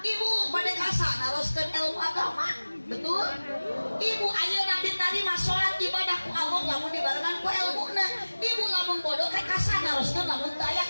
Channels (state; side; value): inverted; both; correlation -1.00